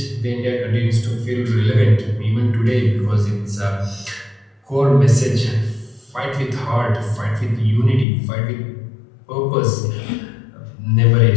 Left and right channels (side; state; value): right; drops out; at 8.1 s